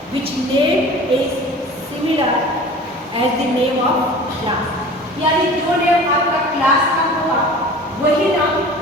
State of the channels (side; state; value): both; normal; correlation 0.41